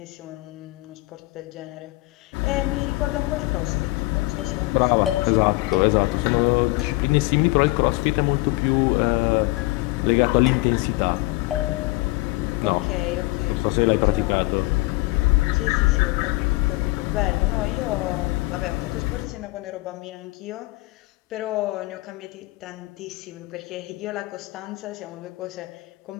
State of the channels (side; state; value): right; quieter; 22.0 dB